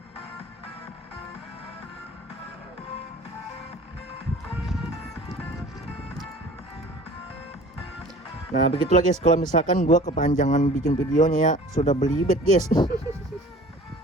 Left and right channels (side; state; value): both; normal; correlation 0.46